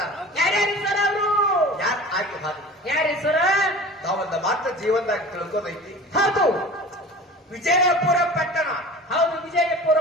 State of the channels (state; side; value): normal; both; correlation 0.39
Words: ಯಾರ್ಯಾರು ಸರ್ ಅವರು? ಯಾರು ಆಗಿ ಹಾಗೆ ಯಾರಿ ಸರ? ತಾವೊಂದು ಮಾತ್ರ ಜೀವನದಾಗ ತಿಳ್ಕೋದೈತಿ. ಹೌದು, ವಿಜಯಪುರ ಪಟ್ಟಣ. ಹೌದು, ವಿಜಯಪುರ